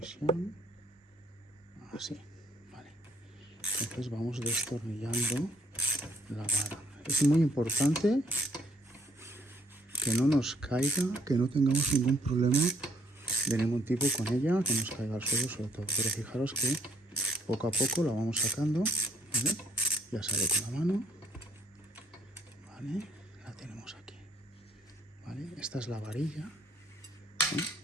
así, vale. Entonces vamos destornillando la vara. Es muy importante que no nos caiga, que no tengamos ningún problema de ningún tipo con ella, que nos caiga al suelo sobre todo. Pero fijaros que poco a poco la vamos sacando, ¿vale? Ya sale con la mano, ¿vale? La tenemos aquí, ¿vale? Esta es la varilla, ¿eh?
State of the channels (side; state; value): both; normal; correlation 0.65